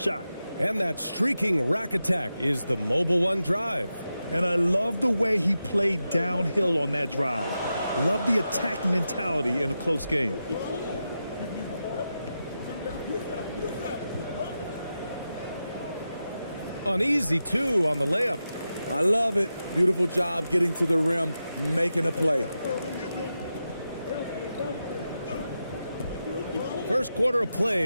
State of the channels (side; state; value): both; inverted; correlation -0.89